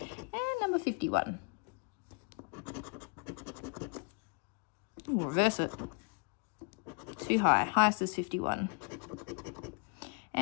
number 51. Ooh, reverse it. Too high. Highest is 51.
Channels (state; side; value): quieter; right; 37.5 dB